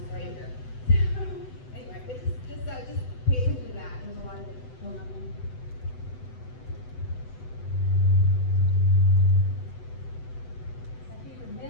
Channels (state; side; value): late; right; 8.0 ms